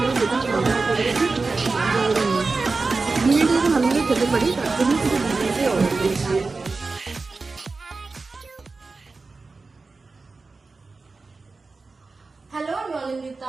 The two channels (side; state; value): left; quieter; 3.9 dB